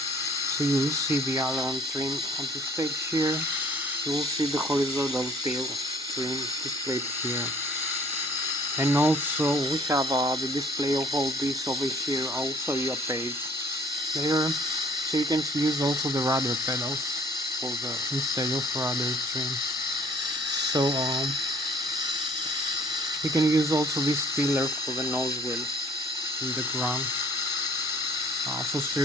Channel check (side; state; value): both; normal; correlation 0.57